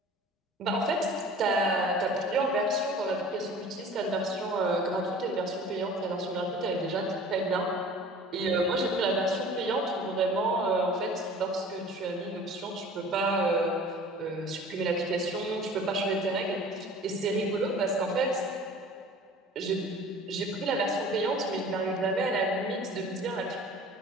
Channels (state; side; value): normal; both; correlation 0.44